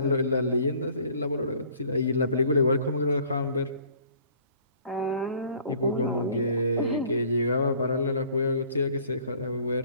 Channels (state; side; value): inverted; both; correlation -0.54